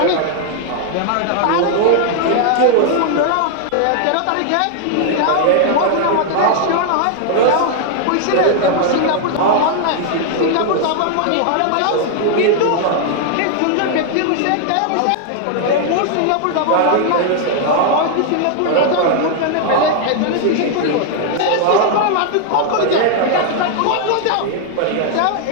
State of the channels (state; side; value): different; both; correlation 0.00